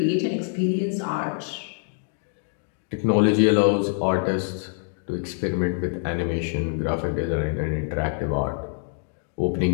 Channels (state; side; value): silent; right; 62 dB below the other